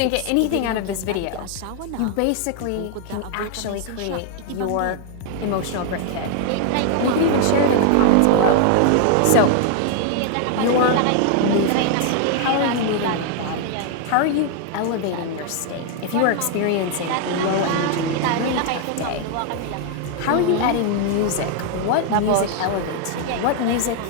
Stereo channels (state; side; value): different; both; correlation 0.00